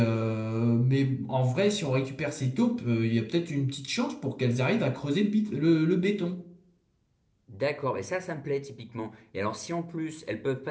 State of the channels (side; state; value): both; identical; correlation 1.00